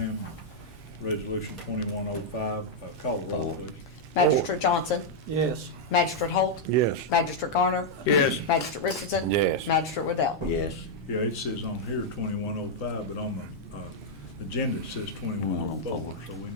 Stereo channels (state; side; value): normal; both; correlation -0.03